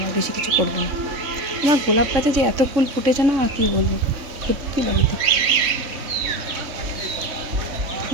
আর বেশি কিছু করবো না। আমার গোলাপ গাছে যে এত ফুল ফুটেছে না, আর কী বলবো, সত্যি বাড়িতে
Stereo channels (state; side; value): late; left; 3.6 ms